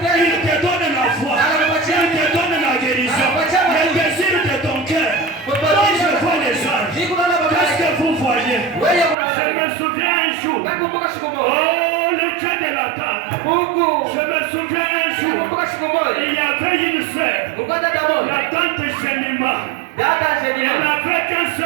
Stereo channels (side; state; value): left; drops out; at 9.2 s